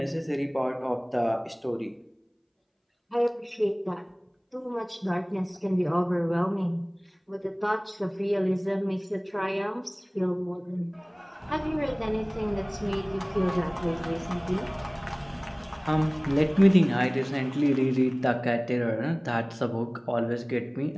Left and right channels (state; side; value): identical; both; correlation 1.00